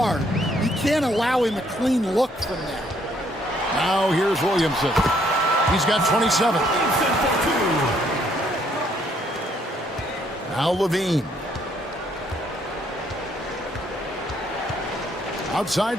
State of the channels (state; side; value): normal; both; correlation 0.68